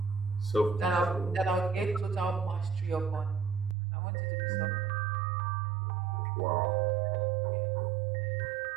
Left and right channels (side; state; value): left; drops out; at 3.8 s